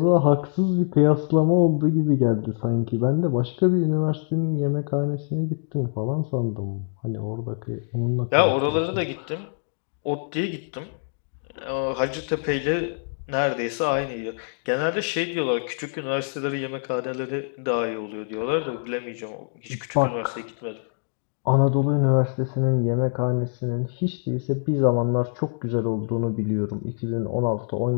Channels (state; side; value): silent; right; digital silence